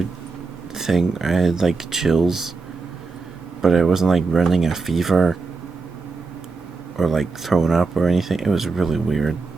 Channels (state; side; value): quieter; left; 4.2 dB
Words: thing. I had like chills, but I wasn't like running a fever or like throwing up or anything. It was really weird